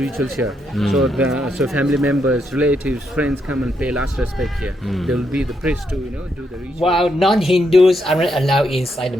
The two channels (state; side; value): normal; both; correlation 0.79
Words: here. So family members, relatives, friends come and pay last respect here. There will be the priest to do the ritual. While non-Hindus aren't allowed inside the